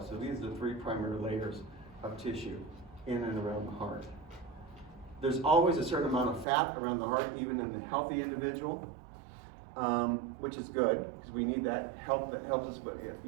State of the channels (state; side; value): drops out; left; at 6.5 s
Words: So these are the three primary layers of tissue in and around the heart. There's always a certain amount of fat around the heart, even in the healthy individual, which is good because we need that help. That helps us with